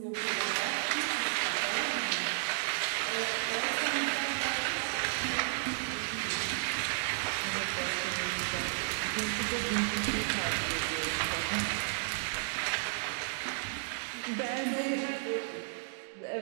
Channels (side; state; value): left; silent; digital silence